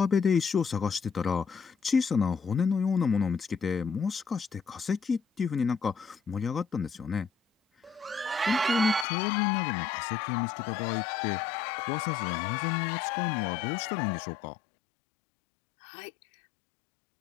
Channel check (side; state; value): right; drops out; at 9.1 s